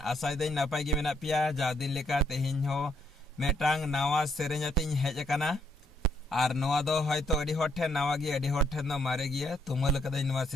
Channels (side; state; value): both; normal; correlation 0.72